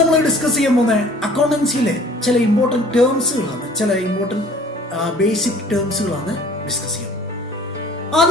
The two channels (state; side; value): normal; both; correlation 0.51